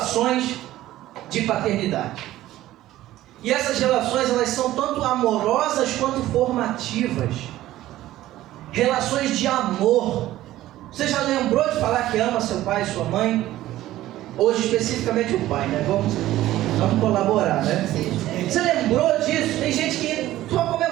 de paternidade. E essas relações, elas são tanto amorosas quanto formativas. Relações de amor. Você já lembrou de falar que ama seu pai e sua mãe? Hoje, especificamente o pai, né? Vamos colaborar, né? Você lembrou disso? Tem gente que só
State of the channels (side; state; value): left; quieter; 14.9 dB